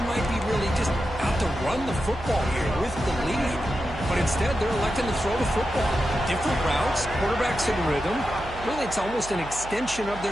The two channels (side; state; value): right; noise; hum, 14 dB below the sound